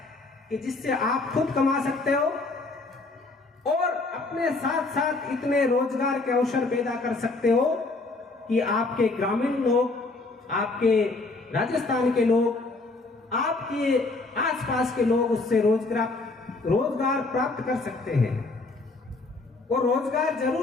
कि जिससे आप खुद कमा सकते हो और अपने साथ साथ इतने रोजगार के अवसर पैदा कर सकते हो कि आपके ग्रामीण लोग, आपके राजस्थान के लोग, आपके आसपास के लोग उससे रोजगार प्राप्त कर सकते हैं। और रोजगार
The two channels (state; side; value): quieter; right; 3.4 dB